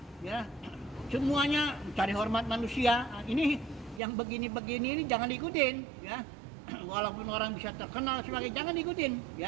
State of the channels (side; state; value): left; drops out; at 4.0 s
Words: ya. Semuanya cari hormat manusia. Ini yang begini-begini ini jangan diikutin ya. Walaupun orang bisa terkenal sebagai, jangan diikutin